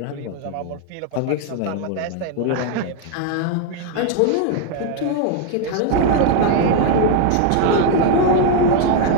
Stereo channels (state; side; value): different; both; correlation 0.00